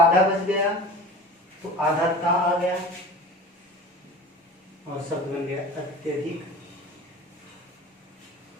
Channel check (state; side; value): normal; both; correlation 0.37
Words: बच गया तो आधा ता आ गया और शब्द बन गया अत्यधिक।